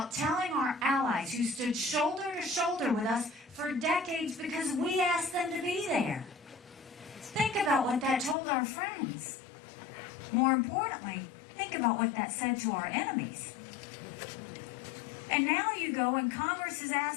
telling our allies who stood shoulder to shoulder with us for decades because we asked them to be there. Think about what that told our friends. More importantly, think about what that said to our enemies. And now you go and Congress is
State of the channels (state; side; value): drops out; right; at 8.3 s